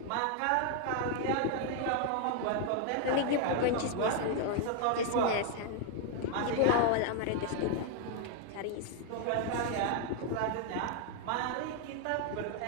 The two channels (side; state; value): both; different; correlation 0.00